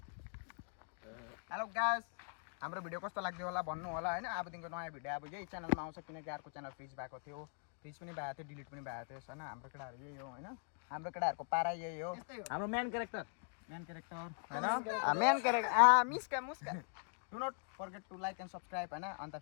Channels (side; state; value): right; silent; 50 dB below the other